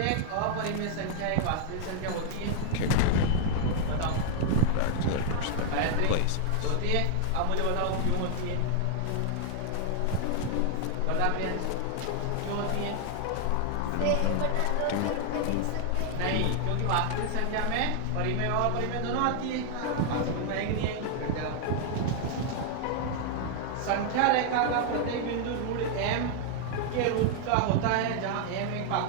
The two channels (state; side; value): different; both; correlation -0.01